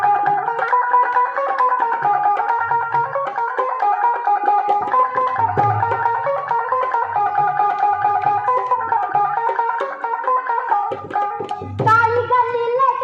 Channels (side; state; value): both; identical; correlation 1.00